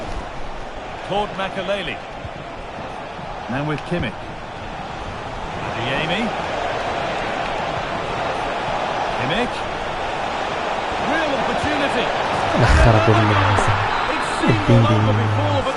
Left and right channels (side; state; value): both; identical; correlation 1.00